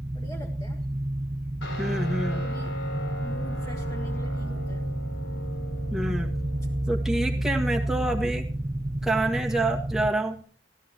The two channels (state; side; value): normal; both; correlation 0.86